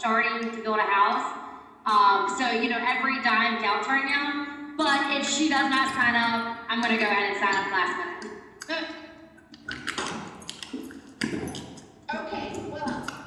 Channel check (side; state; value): both; identical; correlation 1.00